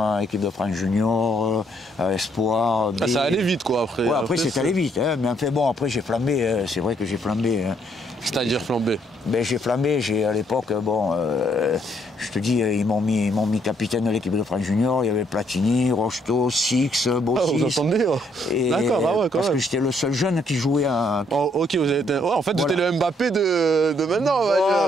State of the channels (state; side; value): normal; both; correlation 0.70